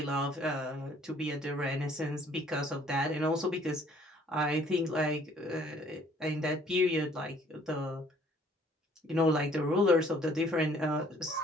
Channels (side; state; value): both; normal; correlation 0.59